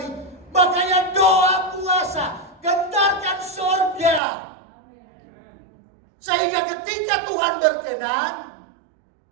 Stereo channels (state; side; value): drops out; left; at 4.2 s